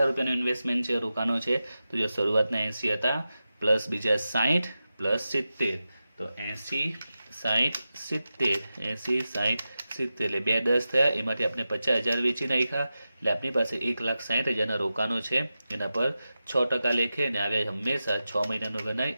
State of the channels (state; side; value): inverted; both; correlation -0.92